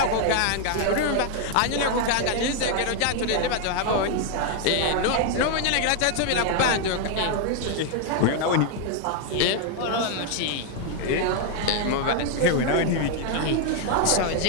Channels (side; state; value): both; different; correlation 0.00